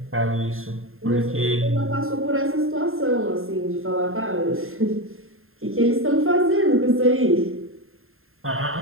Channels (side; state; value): left; late; 0.61 ms